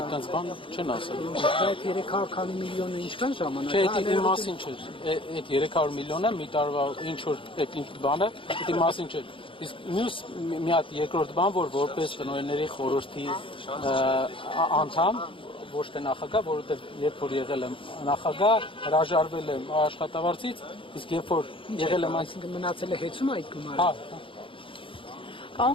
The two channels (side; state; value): right; late; 0.25 ms